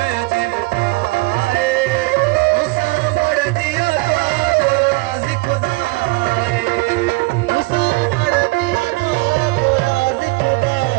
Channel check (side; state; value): left; quieter; 23.9 dB